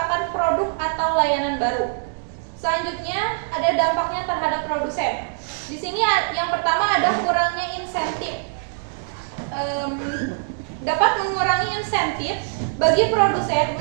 produk atau layanan baru. Selanjutnya ada dampaknya terhadap produsen. Di sini yang pertama ada kurangnya insentif. Dapat mengurangi insentif bagi produsen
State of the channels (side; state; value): left; silent; digital silence